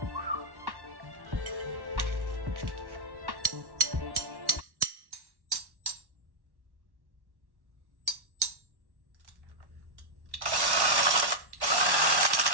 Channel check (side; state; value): left; late; 1.1 ms